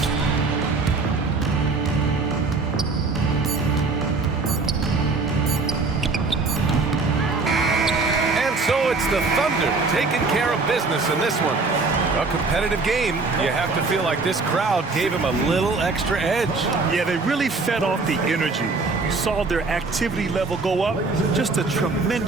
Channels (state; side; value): quieter; left; 3.9 dB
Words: So it's the Thunder taking care of business in this one. A competitive game. You have to feel like this crowd gave him a little extra edge. Yeah, they really fed off the energy. You saw their activity level go up. Just a